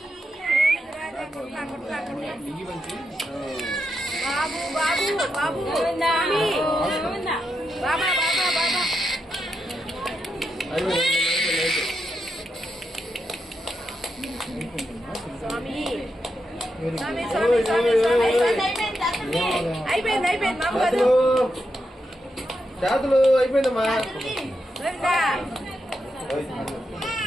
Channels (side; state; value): both; normal; correlation 0.84